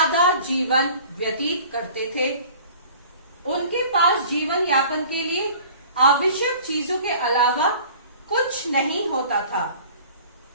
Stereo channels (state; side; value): inverted; both; correlation -0.47